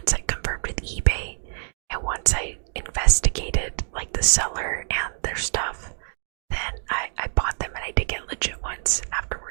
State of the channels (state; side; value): silent; left; 60 dB below the other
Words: I confirmed with eBay and once I investigated like the seller and their stuff, then I bought them, and I did get legit ones